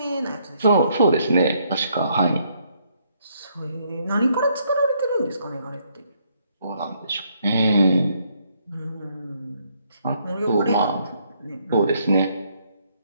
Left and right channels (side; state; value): both; inverted; correlation -0.71